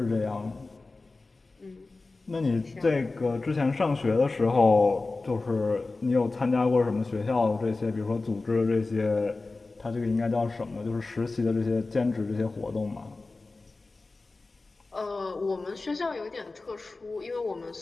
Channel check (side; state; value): right; quieter; 3.5 dB